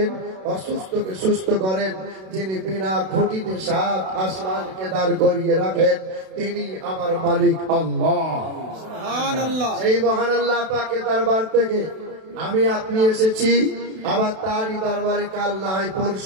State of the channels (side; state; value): left; late; 32 ms